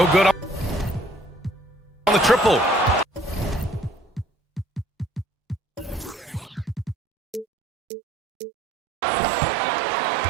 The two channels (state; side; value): drops out; left; at 7.5 s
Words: good on the triple.